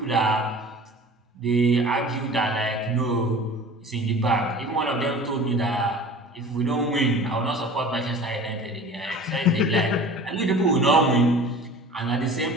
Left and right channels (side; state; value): both; normal; correlation 0.41